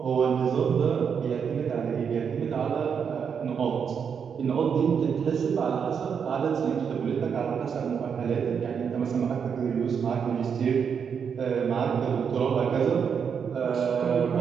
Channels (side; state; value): left; quieter; 6.9 dB